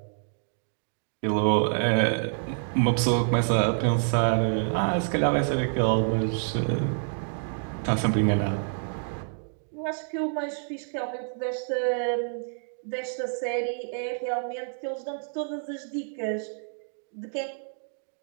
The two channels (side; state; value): left; silent; digital silence